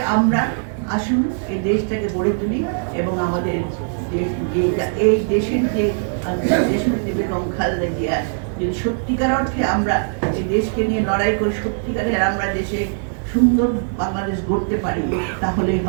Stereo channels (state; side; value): silent; left; digital silence